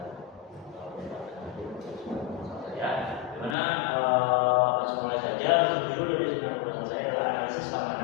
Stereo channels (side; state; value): right; drops out; at 3.6 s